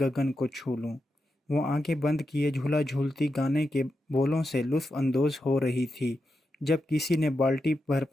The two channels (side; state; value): both; normal; correlation 0.87